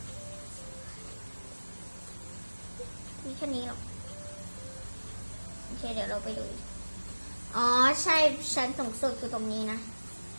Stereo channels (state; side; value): inverted; both; correlation -1.00